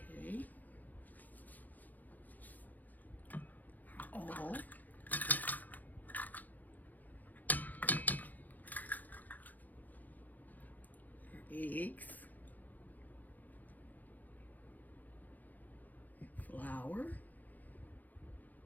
All. Eggs. Flour.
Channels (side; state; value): right; late; 0.083 ms